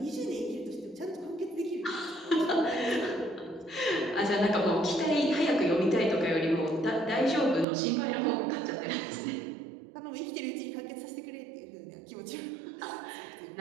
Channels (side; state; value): left; drops out; at 7.7 s